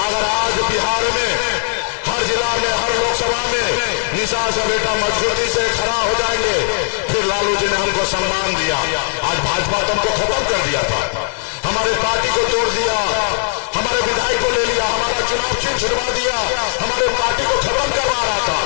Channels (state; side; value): silent; right; 64 dB below the other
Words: आज बिहार में हर जिला में, हर लोकसभा में निषाद का बेटा मजबूती से खड़ा हो जाएंगे, फिर लालू जी ने हमको सम्मान दिया। आज भाजपा तो हमको खत्म कर दिया था, हमारे पार्टी को तोड़ दिया, हमारे विधायक को ले लिया, हमारा चुनाव चिन्ह छुड़वा दिया, हमारे पार्टी को खत्म करवा रहा था।